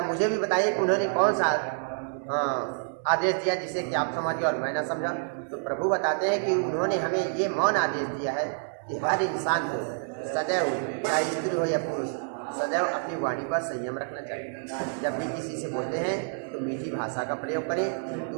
मुझे भी बताइए कि उन्होंने कौन सा आदेश दिया जिसे कि आप समझे और मैं ना समझा। तो प्रभु बताते हैं कि उन्होंने हमें ये मौन आदेश दिया है कि हर इंसान को सदैव, चाहे स्त्री हो या पुरुष, सदैव अपनी वाणी पर संयम रखना चाहिए। जब भी किसी से बोलते हैं तो मीठी भाषा का प्रयोग करें।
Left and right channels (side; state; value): left; silent; digital silence